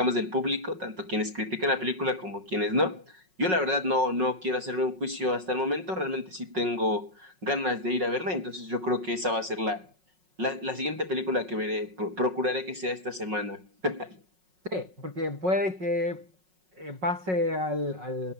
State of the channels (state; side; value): late; left; 5.4 ms